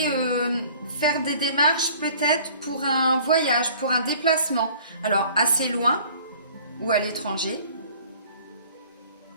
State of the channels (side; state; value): both; inverted; correlation -0.51